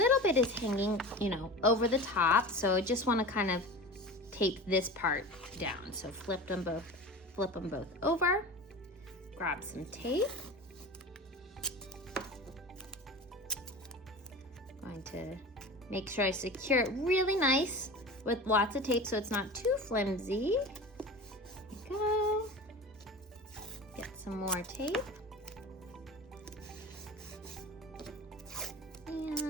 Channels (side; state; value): both; normal; correlation 0.33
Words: bit is hanging, over the top. So I just want to kind of tape this part down. So flip them both over. Grab some tape. Going to make sure I secure it really nice with lots of tape so it's not too flimsy. There you go. Get some more tape.